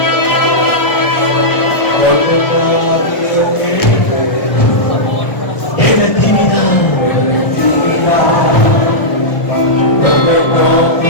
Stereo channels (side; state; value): right; late; 1.4 ms